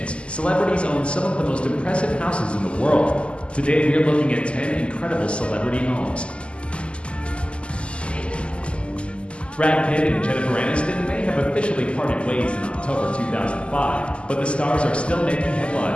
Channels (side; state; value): right; late; 0.054 ms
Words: celebrities own some of the most impressive houses in the world. Today we are looking at 10 incredible celebrity homes. Brad Pitt and Jennifer Aniston may have officially parted ways in October 2005, but the stars are still making